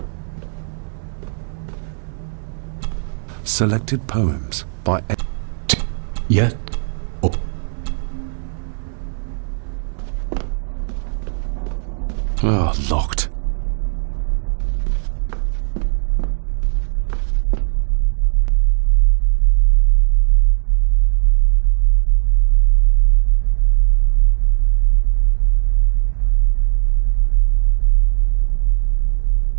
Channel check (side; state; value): left; silent; digital silence